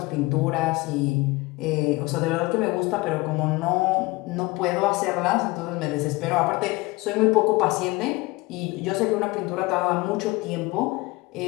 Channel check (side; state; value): right; quieter; 22.2 dB